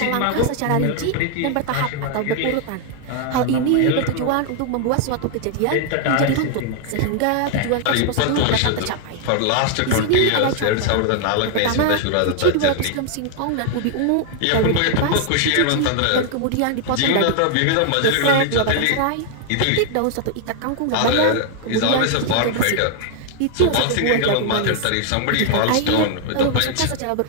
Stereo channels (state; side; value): different; both; correlation 0.00